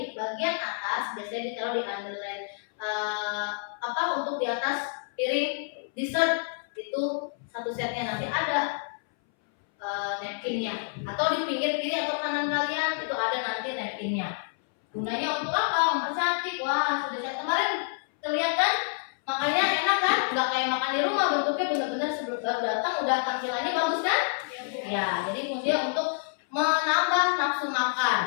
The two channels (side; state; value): right; silent; 59 dB below the other